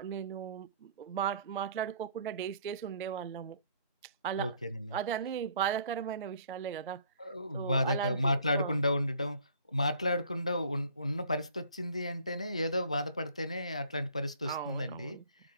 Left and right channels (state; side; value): inverted; both; correlation -0.57